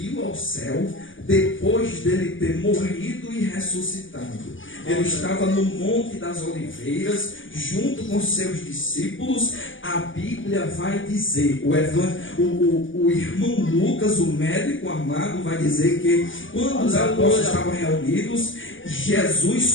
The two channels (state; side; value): late; right; 0.57 ms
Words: ao céu, depois dele ter morrido e ressuscitado. Ele estava no Monte das Oliveiras, junto com seus discípulos. A Bíblia vai dizer, o irmão Lucas, o médico amado, vai dizer que quando os apóstolos estavam reunidos, Jesus